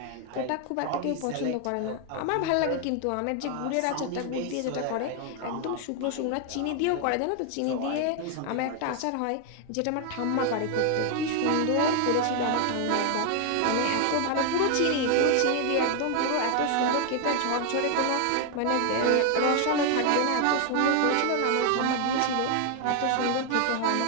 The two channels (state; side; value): different; both; correlation 0.01